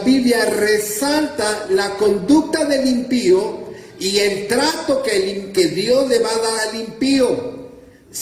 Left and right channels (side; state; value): both; identical; correlation 1.00